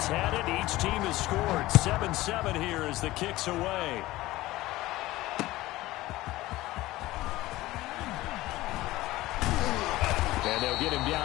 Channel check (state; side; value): quieter; right; 17.7 dB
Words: had it, each team has scored. 7-7 here as the kick's away. And they'll get him